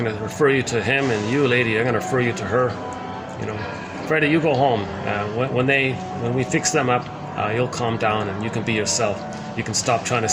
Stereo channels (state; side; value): identical; both; correlation 1.00